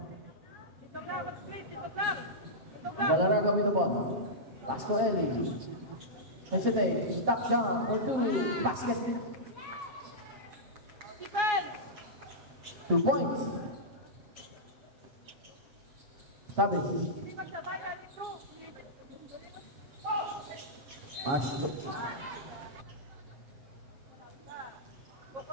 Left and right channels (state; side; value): late; left; 7.2 ms